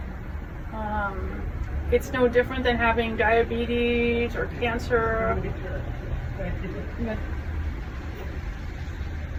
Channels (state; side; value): identical; both; correlation 1.00